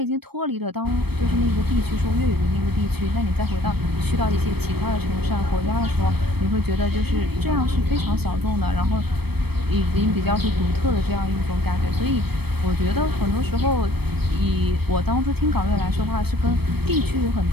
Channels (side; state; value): left; late; 0.97 ms